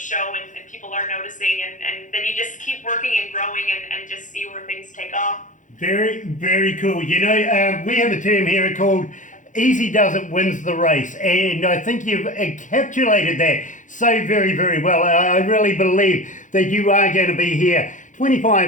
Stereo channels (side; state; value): right; late; 0.37 ms